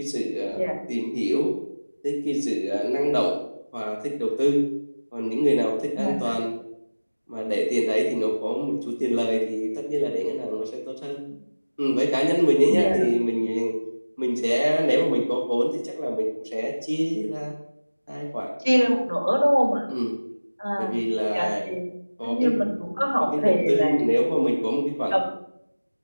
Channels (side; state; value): both; inverted; correlation -1.00